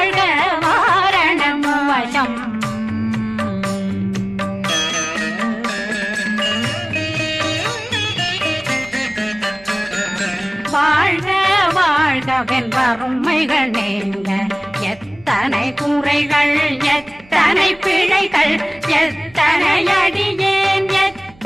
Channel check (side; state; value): right; noise; hum, 26 dB below the sound